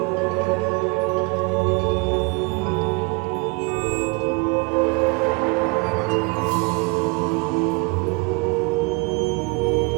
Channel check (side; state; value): left; quieter; 29.5 dB